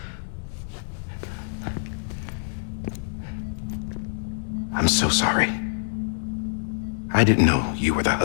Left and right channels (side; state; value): right; silent; 61 dB below the other